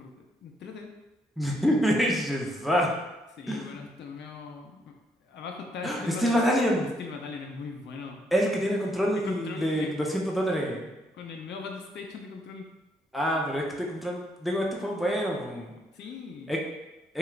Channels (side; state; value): both; normal; correlation 0.73